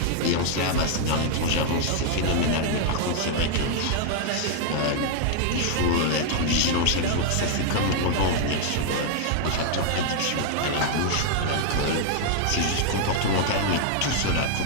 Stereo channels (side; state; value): both; different; correlation 0.00